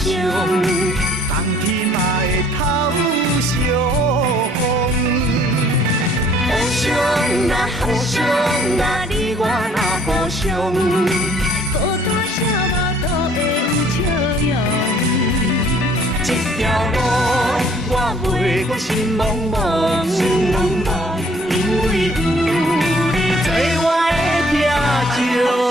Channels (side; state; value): both; normal; correlation 0.59